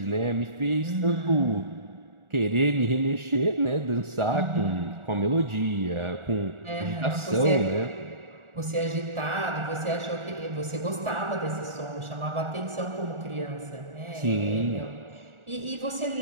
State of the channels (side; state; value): left; late; 1.4 ms